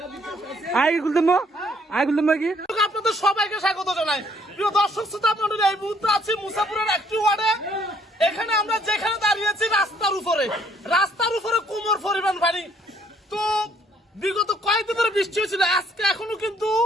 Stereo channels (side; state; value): both; normal; correlation 0.65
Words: আই খুলতাম কি আপনাদের সবাইকে স্বাগত জানাই। প্রিয় দর্শক শ্রোতা মণ্ডলী, এই মুহূর্তে আছি মুসাপুরের একটি ওয়ার্ডে। এখানে আমরা যেখানে দাঁড়িয়েছি রাস্তার উপরে কোমর পরিমাণ পানি। তো বিগত কয়েকদিন ধরে বৃষ্টি হয়েছিল, আজকে এখনো কিন্তু